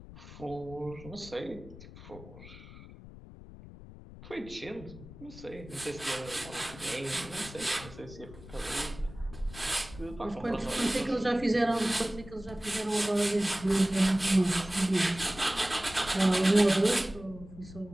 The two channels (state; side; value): noise; left; rumble, 16 dB below the sound